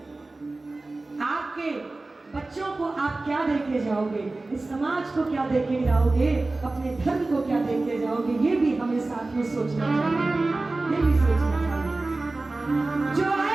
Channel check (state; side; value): quieter; left; 3.2 dB